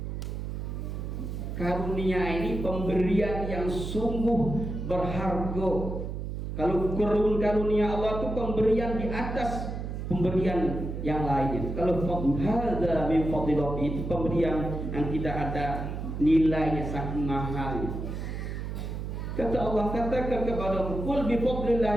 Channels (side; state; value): right; noise; hum, 5 dB below the sound